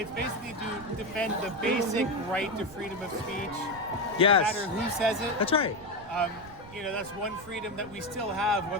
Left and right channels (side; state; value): right; noise; rumble, 19 dB below the sound